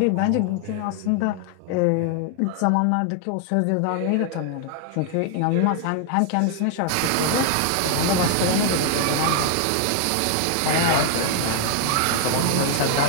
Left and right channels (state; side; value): different; both; correlation 0.00